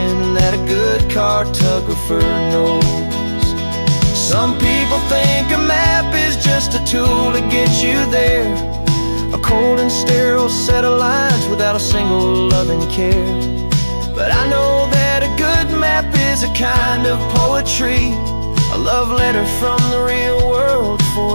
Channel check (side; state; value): both; inverted; correlation -1.00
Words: that a good cartographer knows. Some people think a map is just a tool to get you there, a cold and sterile set of lines without a single loving care. But I know that a good map is a kind of poetry, a love letter from the real world